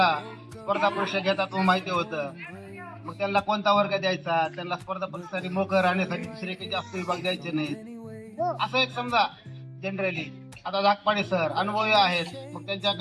स्पर्धा परीक्षा घेतात माहिती होतं. मग त्यांना कोणता वर्ग द्यायचा, त्यांना स्पर्धा परीक्षेसाठी मोकळं राहण्यासाठी दुसरे काही जास्त विभाग द्यायचे नाहीत, असं एक समजा जनरली. आता धाकपाडे सर अनुभवी आहेत, मग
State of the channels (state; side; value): identical; both; correlation 1.00